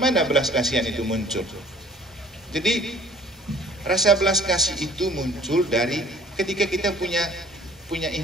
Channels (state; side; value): normal; both; correlation 0.52